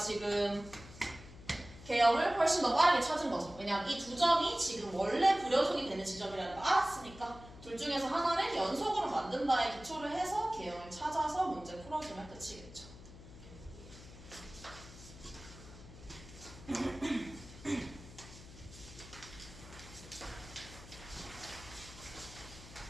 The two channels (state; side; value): noise; left; hum, 17 dB below the sound